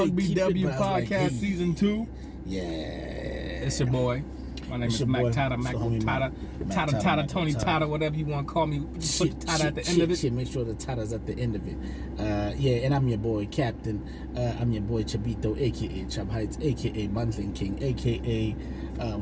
Podcast Season 2. Yeah. It's your boy. My name is Mac Tata, Tata, Tony Tata, whatever you want to call me. Put Tata at the end of it. Make sure the Tata's at the end of it. And I'm your boy, Captain. I'm your boy, Chabito, a.k.a. Chab Heights, a.k.a. Monthling King, a.k.a.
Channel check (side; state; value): both; identical; correlation 1.00